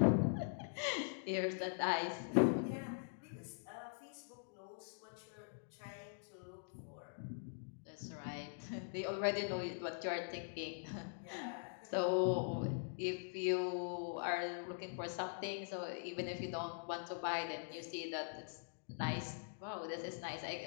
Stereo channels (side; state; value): right; silent; digital silence